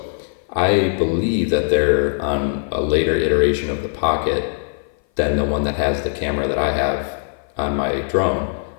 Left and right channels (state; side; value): silent; right; 57 dB below the other